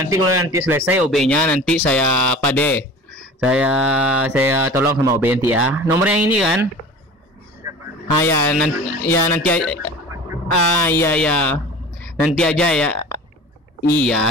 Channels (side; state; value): both; normal; correlation 0.39